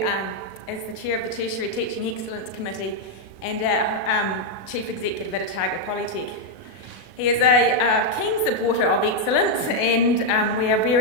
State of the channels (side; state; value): right; late; 37 ms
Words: is the Chair of the Tertiary Teaching Excellence Committee and our Chief Executive at Otago Polytech. He is a keen supporter of excellence, and we are